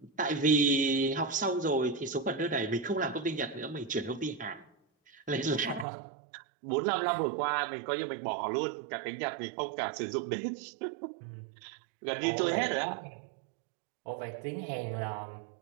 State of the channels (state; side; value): drops out; left; at 5.9 s